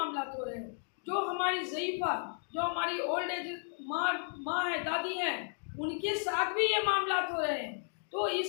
हो रहे हैं। जो हमारी ज़ईफ़ा, जो हमारी ओल्ड एज माँ है, दादी हैं, उनके साथ भी ये मामला हो रहे हैं। तो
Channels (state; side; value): silent; right; 55 dB below the other